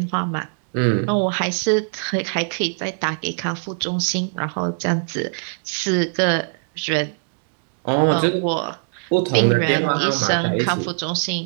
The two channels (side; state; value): left; silent; 64 dB below the other